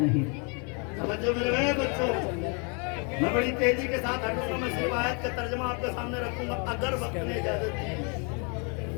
توجہ میرے بچوں میں بڑی تیزی کے ساتھ ہٹوں گا. میں صرف آیت کا ترجمہ آپ کے سامنے رکھوں گا اگر وقت نے اجازت دی.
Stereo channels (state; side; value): quieter; right; 35.7 dB